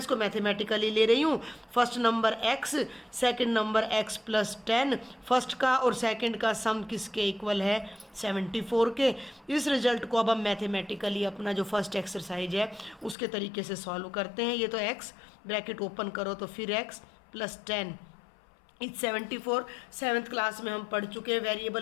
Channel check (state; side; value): drops out; right; at 13.2 s